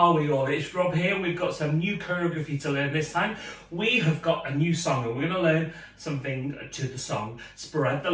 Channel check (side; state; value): both; identical; correlation 1.00